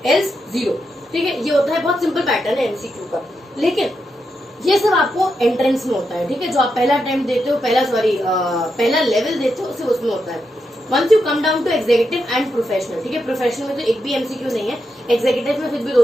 else 0. ठीक है, ये होता है, बहुत सिंपल पैटर्न है MCQ का. लेकिन ये सब आपको एंट्रेंस में होता है. ठीक है, जो आप पहला अटेम्प्ट देते हो, पहला लेवल देते हो, सिर्फ उसमें होता है. Once you come down to executive and professional, ठीक है, प्रोफेशनल में तो एक भी MCQ नहीं है, एग्जीक्यूटिव में फिर भी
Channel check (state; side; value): normal; both; correlation 0.85